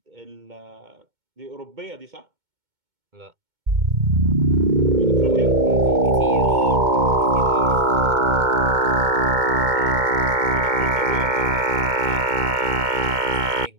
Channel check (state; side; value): late; left; 2.2 ms